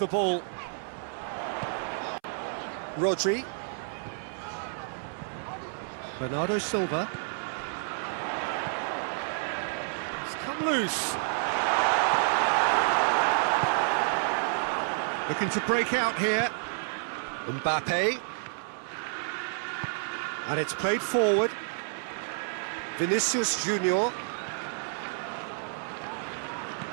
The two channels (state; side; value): silent; left; 58 dB below the other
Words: ball. Rodri. Bernardo Silva. It's come loose. Looking to break out here. Mbappe. And it's played forward. Vinicius Junior.